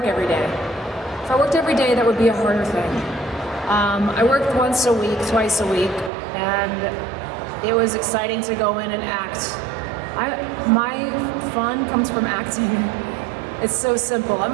every day. If I worked every day, that would be a harder thing. I worked once a week, twice a week, and it was exciting to go in and act. My fun comes from acting. It's so simple.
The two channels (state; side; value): drops out; left; at 6.1 s